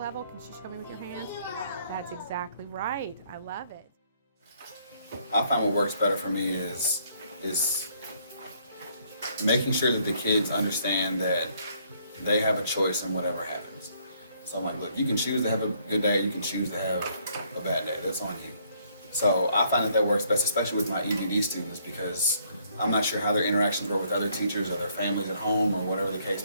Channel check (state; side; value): inverted; both; correlation -0.67